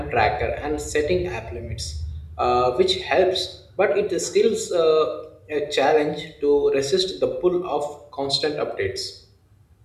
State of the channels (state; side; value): identical; both; correlation 1.00